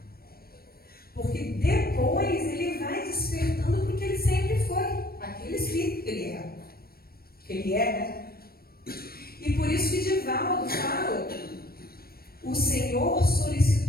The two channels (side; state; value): right; late; 0.44 ms